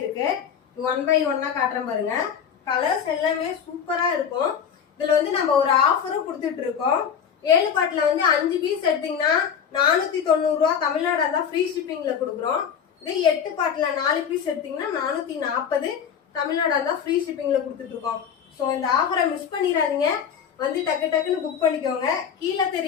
1 by 1 காட்டுறேன் பாருங்க. கலர்ஸ் எல்லாமே சூப்பரா இருக்கும். இதுல நம்ம ஒரு ஆஃபரும் கொடுத்துட்டு இருக்கோம். 7 பாட்டுல 5 பீஸ் எடுத்தீங்கன்னா 490 ரூபா தமிழ்நாடு தான் ஃப்ரீ ஷிப்பிங்ல கொடுக்குறோம். இதே 8 பாட்டுல 4 பீஸ் எடுத்தீங்கன்னா 440 தமிழ்நாடு தான் ஃப்ரீ ஷிப்பிங்ல கொடுத்துட்டு இருக்கோம். ஸோ இந்த ஆஃபரை மிஸ் பண்ணிடாதீங்க. டக்கு டக்குன்னு புக் பண்ணிக்கோங்க. கீழே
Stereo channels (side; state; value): right; quieter; 7.7 dB